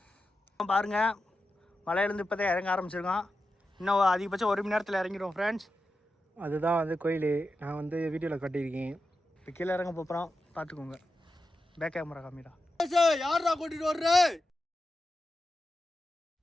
பாருங்கள், மலையிலேருந்து இப்போ தான் இறங்க ஆரம்பிச்சிருக்கோம். இன்னும் அதிகபட்சம் 1 மணி நேரத்தில் இறங்கிடுவோம் ஃப்ரெண்ட்ஸ். அதுதான் வந்து கோயில். நான் வந்து வீடியோவில் கட்டியிருக்கேன். இப்போ கீழே இறங்க போகிறோம், பார்த்துக்கோங்க. பேக் கேமரா காமிடா. யாரா கூட்டிட்டு வர்ற?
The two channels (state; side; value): normal; both; correlation 0.91